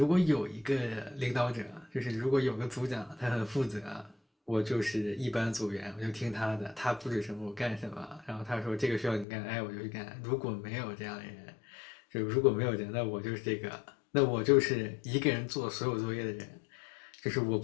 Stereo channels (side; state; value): right; drops out; at 9.2 s